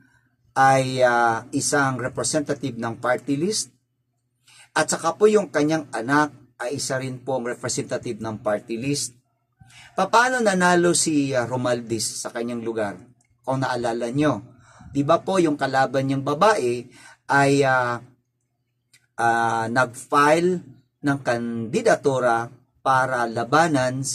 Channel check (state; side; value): identical; both; correlation 1.00